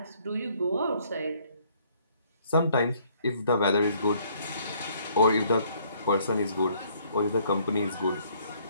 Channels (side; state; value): both; inverted; correlation -0.63